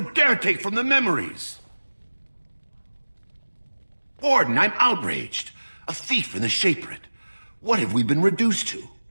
dare take from the memories? Warden, I'm outraged. A thief in the Shapered. What have we been reduced to?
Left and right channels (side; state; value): both; inverted; correlation -1.00